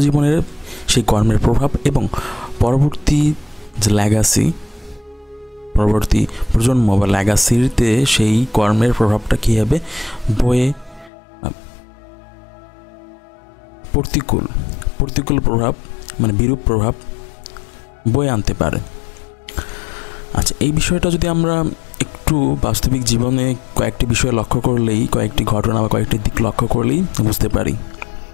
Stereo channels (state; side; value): drops out; right; at 11.1 s